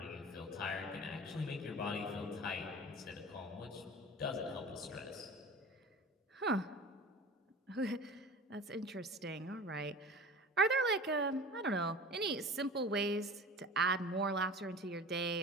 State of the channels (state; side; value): normal; both; correlation 0.37